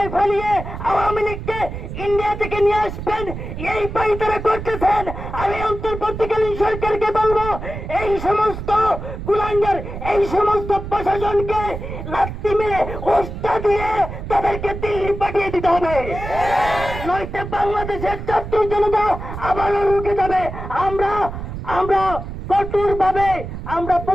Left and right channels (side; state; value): right; noise; rumble, 8 dB below the sound